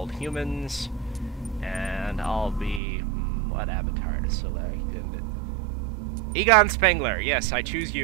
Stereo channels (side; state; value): left; drops out; at 2.8 s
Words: humans, and I'll be... what avatar to select? Egon Spengler, yes, I choose